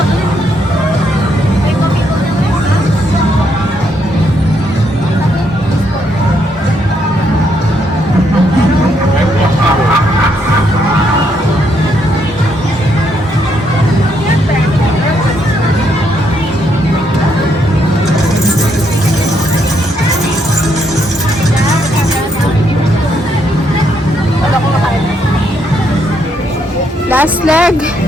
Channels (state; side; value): normal; both; correlation 0.75